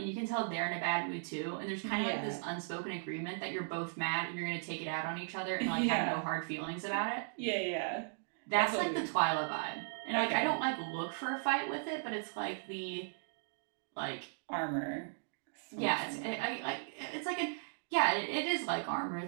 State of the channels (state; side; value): silent; left; digital silence